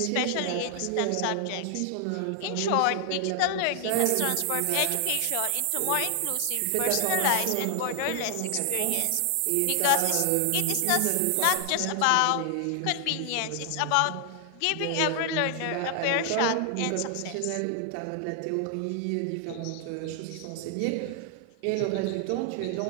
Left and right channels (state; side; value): different; both; correlation 0.00